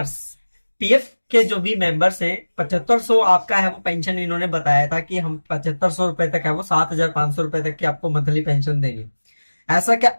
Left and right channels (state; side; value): inverted; both; correlation -1.00